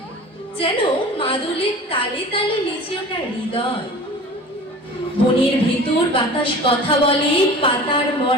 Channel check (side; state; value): both; normal; correlation 0.40